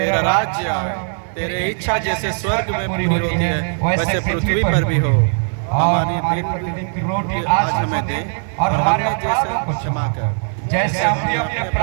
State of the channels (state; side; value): silent; left; 67 dB below the other